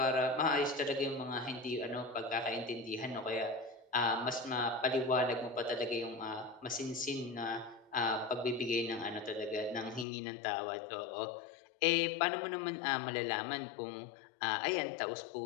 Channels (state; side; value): drops out; right; at 10.1 s